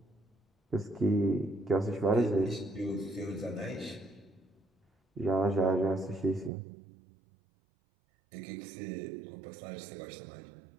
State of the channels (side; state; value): left; drops out; at 6.5 s